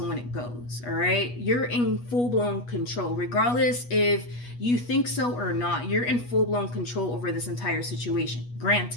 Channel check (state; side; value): late; right; 8.3 ms